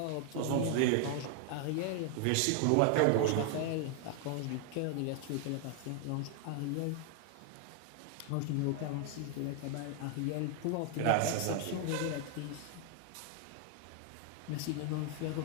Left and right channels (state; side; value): different; both; correlation 0.00